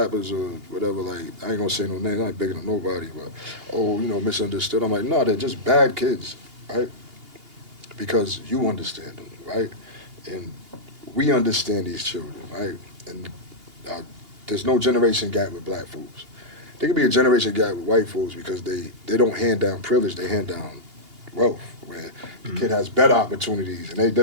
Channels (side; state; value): left; late; 2.8 ms